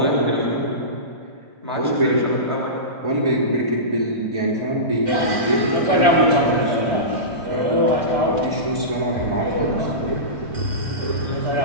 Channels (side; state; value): left; late; 2.3 ms